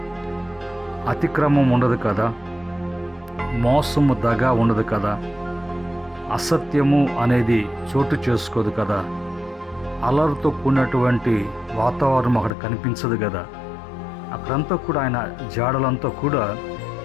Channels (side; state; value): right; drops out; at 12.5 s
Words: అతిక్రమం ఉండదు కదా, మోసము, దగ ఉండదు కదా, అసత్యము అనేది చోటు చేసుకోదు కదా, అలర్తో కూడినటువంటి వాతావరణం అక్కడ కనిపించదు కదా. అక్కడంతా కూడా ఆయన జాడలంతా కూడా